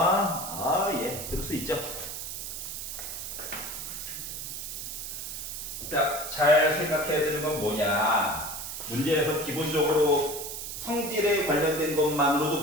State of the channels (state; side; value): noise; right; hiss, 7 dB below the sound